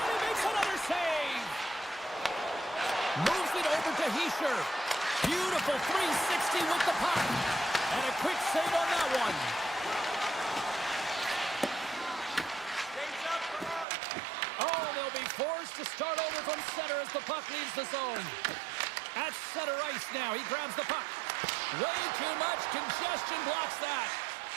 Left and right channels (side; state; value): left; drops out; at 13.9 s